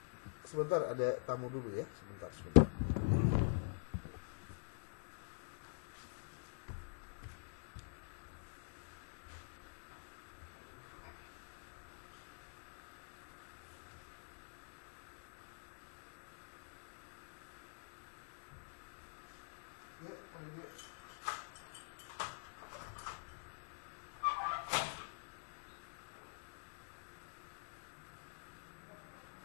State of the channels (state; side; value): silent; right; digital silence